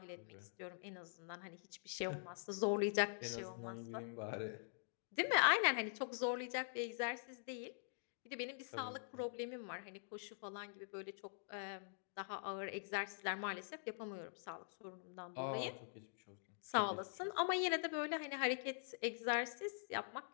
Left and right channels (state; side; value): silent; right; digital silence